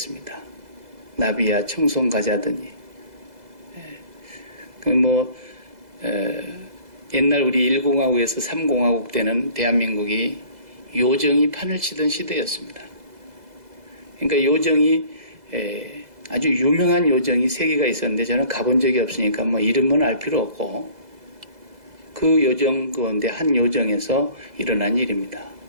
나비야 청송 가자더니 옛날 우리 1공화국에서 3공화국 때는 대한민국이 요정이 판을 치던 시대였습니다. 그러니까 요정이 아주 유명한 요정이 3개가 있었는데 저는 가본 적이 없으니까 이름은 알 필요 없고 그 요정 가운데 한 요정에서 일어난 일입니다.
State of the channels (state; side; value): late; left; 2.0 ms